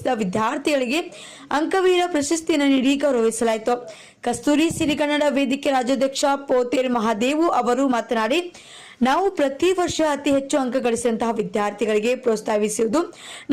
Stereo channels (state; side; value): identical; both; correlation 1.00